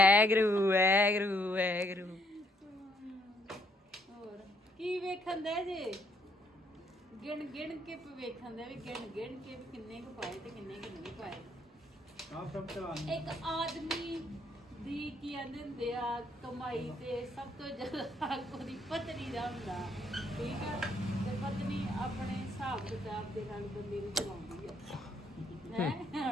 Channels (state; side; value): normal; both; correlation 0.71